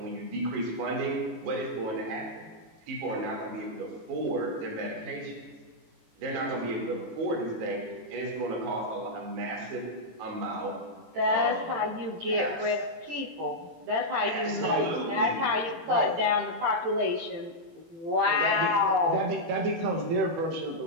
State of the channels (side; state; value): left; late; 18 ms